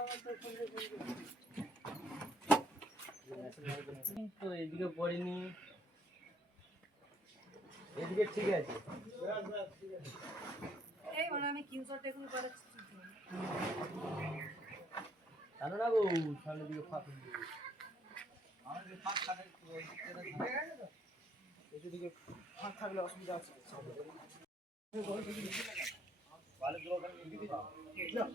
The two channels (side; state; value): both; normal; correlation 0.67